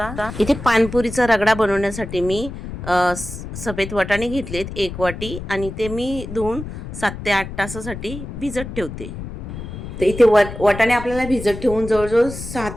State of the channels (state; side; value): noise; left; rumble, 10 dB below the sound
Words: इथे पानपुरीचा रगडा बनवण्यासाठी मी सफेद वाटाणे घेतलेत 1 वाटी आणि ते मी धुवून 7 ते 8 तासासाठी भिजत ठेवते. तर इथे वाटाणे आपल्याला भिजत ठेवून जवळजवळ 6